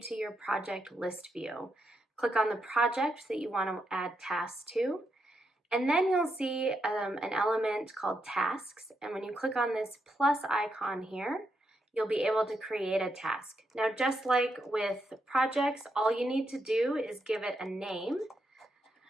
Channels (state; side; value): normal; both; correlation 0.82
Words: to your project list view. Click on the project that you want to add tasks to, and then you'll see an element called Tasks, and when you click on this plus icon here, you'll be able to create a task. Now, just like with projects, all you need to do is give it a name,